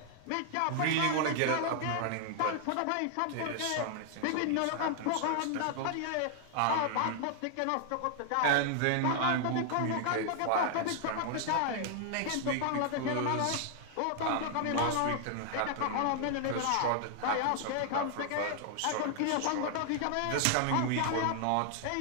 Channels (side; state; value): both; different; correlation 0.00